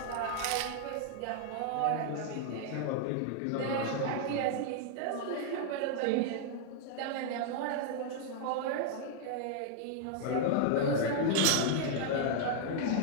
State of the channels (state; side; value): different; both; correlation 0.00